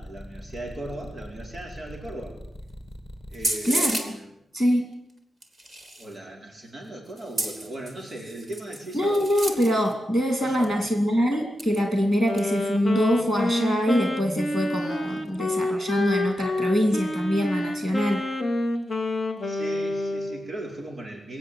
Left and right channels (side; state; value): both; normal; correlation 0.89